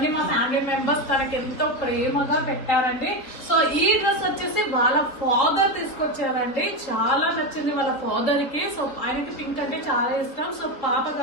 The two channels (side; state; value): right; late; 4.0 ms